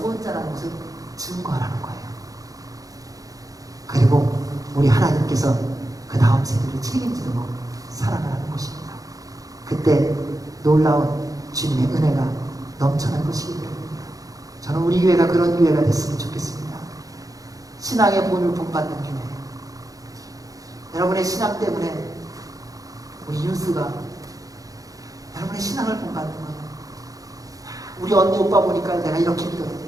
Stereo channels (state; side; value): late; left; 0.17 ms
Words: 것을 증거하라는 거예요. 그리고 우리 하나님께서 그 다음 세대를 책임지고 살아가는 것입니다. 그때 놀라운 주님의 은혜가 넘쳐날 것이기 때문입니다. 저는 우리 교회가 그런 교회가 됐으면 좋겠습니다. 신앙의 본을 본받는 교회. 여러분의 신앙 때문에 우리 윤수가 여러분의 신앙을 본받는 거예요. 우리 언니 오빠 보니까 내가 이렇게 믿어야 돼.